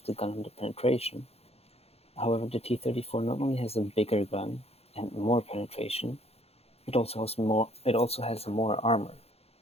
the gun and the penetration. However, the T-34 not only has a bigger gun and more penetration, it also has more armor.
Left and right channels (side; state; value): right; late; 0.29 ms